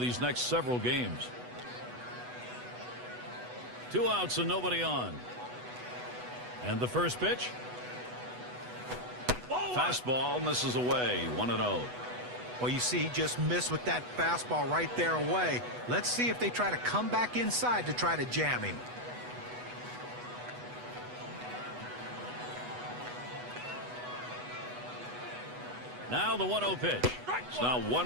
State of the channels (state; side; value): late; left; 8.1 ms